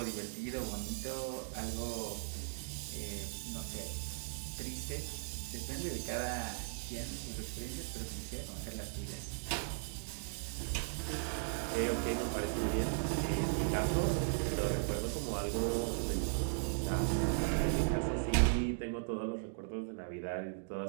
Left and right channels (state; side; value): silent; left; digital silence